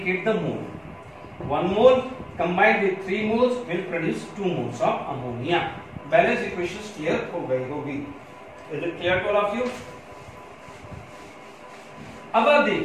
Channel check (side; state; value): both; identical; correlation 1.00